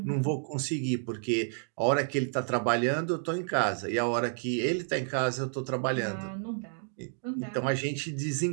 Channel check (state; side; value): silent; left; digital silence